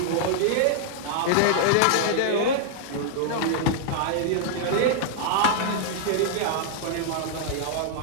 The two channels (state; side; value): different; both; correlation -0.01